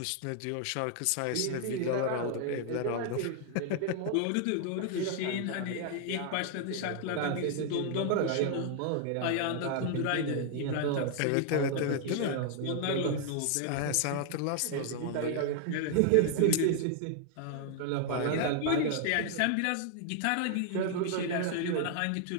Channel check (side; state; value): both; different; correlation 0.00